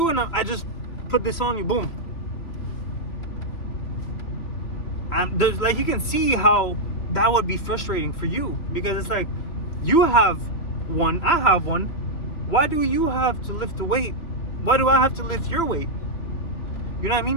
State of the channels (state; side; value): late; right; 2.9 ms